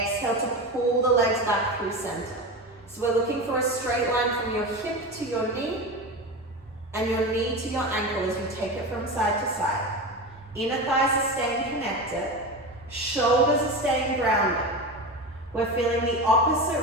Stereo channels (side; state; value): both; normal; correlation 0.24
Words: to pull the legs back through center. So we're looking for a straight line from your hip to your knee and your knee to your ankle as you take it from side to side. Inner thighs are staying connected. Shoulders are staying grounded. We're feeling the